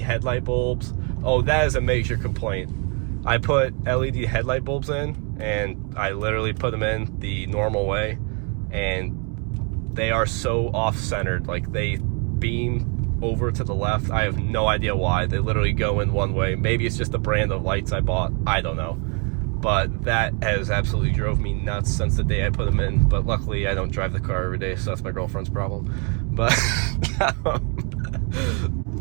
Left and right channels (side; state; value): left; quieter; 36.5 dB